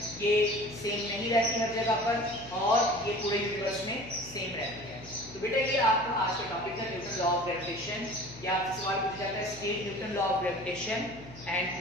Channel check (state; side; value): noise; left; hum, 17 dB below the sound